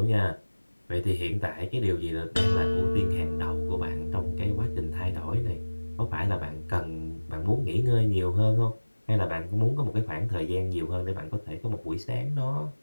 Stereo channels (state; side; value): inverted; both; correlation -1.00